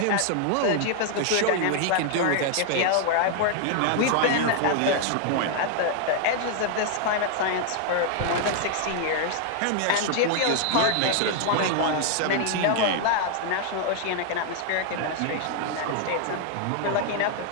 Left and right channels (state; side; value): different; both; correlation 0.00